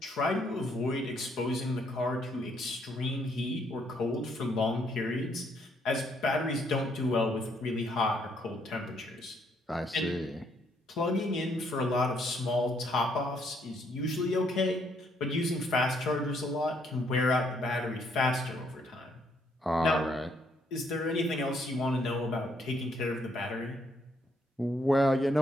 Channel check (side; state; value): both; normal; correlation 0.70